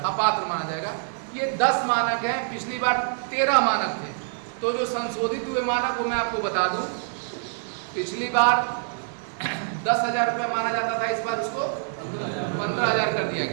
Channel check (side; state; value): left; silent; digital silence